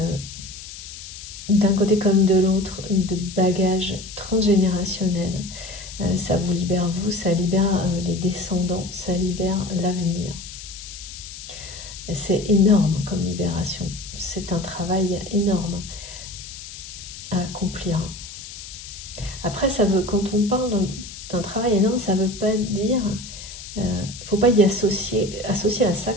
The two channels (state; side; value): noise; left; hiss, 13 dB below the sound